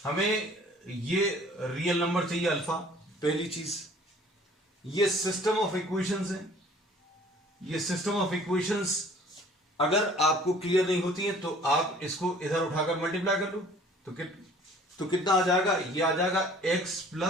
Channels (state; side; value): normal; both; correlation 0.52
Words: हमें ये रियल नंबर चाहिए अल्फा, पहली चीज। ये सिस्टम ऑफ इक्वेशंस है, ये सिस्टम ऑफ इक्वेशंस अगर आपको क्लियर नहीं होती है तो आप इसको इधर उठाकर मल्टीप्लाई कर लो, तो कितना आ जाएगा, ये आ जाएगा x